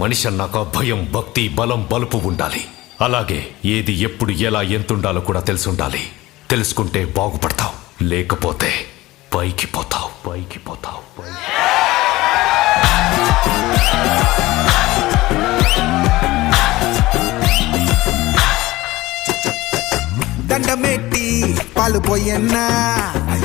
అన్నాక భయం, భక్తి, బలం, బలుపు ఉండాలి. అలాగే ఏది ఎప్పుడు ఎలా ఎంతుండాలో కూడా తెలిసి ఉండాలి. తెలుసుకుంటే బాగుపడతావు, లేకపోతే పైకి పోతావు. దండమెట్టి పాలు పోయన్నా,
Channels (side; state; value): right; quieter; 18.6 dB